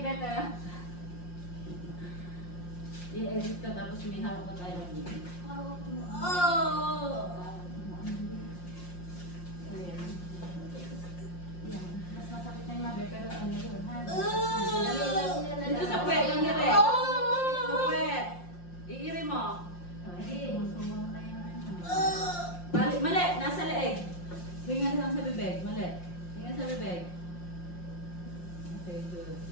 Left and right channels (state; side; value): late; right; 5.6 ms